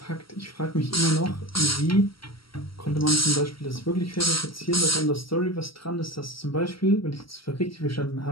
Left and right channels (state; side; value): late; right; 0.75 ms